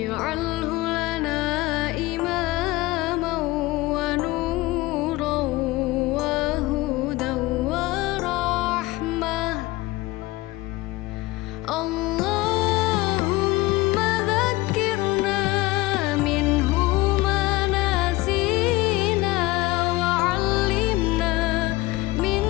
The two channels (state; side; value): quieter; right; 19.9 dB